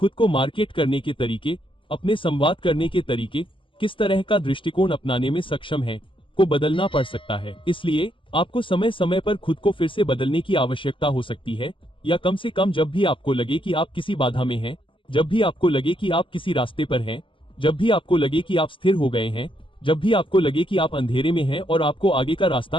को मार्केट करने के तरीके, अपने संवाद करने के तरीके, किस तरह का दृष्टिकोण अपनाने में सक्षम है, को बदलना पड़ सकता है। इसलिए आपको समय समय पर खुद को फिर से बदलने की आवश्यकता हो सकती है, या कम से कम जब भी आपको लगे कि आप किसी बाधा में हैं, जब भी आपको लगे कि आप किसी रास्ते पर हैं, जब भी आपको लगे कि आप स्थिर हो गए हैं, जब भी आपको लगे कि आप अंधेरे में हैं और आपको आगे का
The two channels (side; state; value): right; late; 0.25 ms